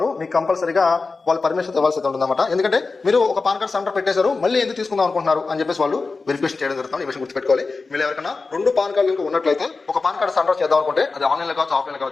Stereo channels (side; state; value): right; quieter; 4.1 dB